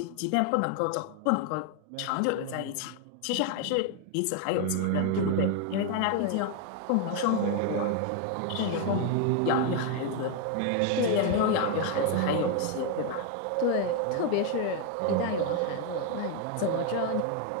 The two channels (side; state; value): both; different; correlation 0.01